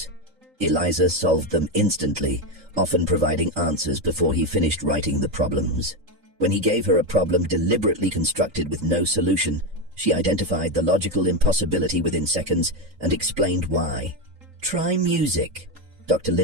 Eliza solved them instantly, often providing answers before he finished writing the problems. When he gave her a problem deliberately constructed with no solution, she identified the logical impossibility within seconds and explained why. "Try music," Dr.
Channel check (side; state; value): left; late; 3.8 ms